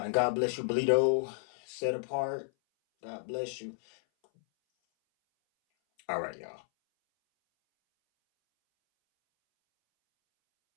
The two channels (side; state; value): right; silent; 56 dB below the other